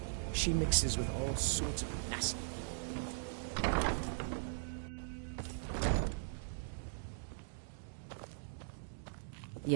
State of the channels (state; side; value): silent; left; digital silence